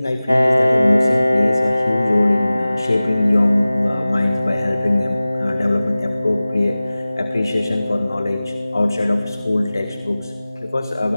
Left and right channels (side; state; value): both; inverted; correlation -0.97